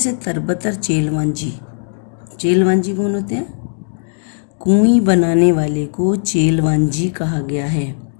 तरबतर चेलवांजी कौन होते हैं? कुएं बनाने वाले को चेलवांजी कहा गया है।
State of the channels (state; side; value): silent; right; digital silence